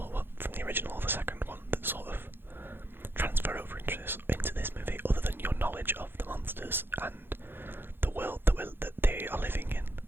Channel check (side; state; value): left; late; 0.10 ms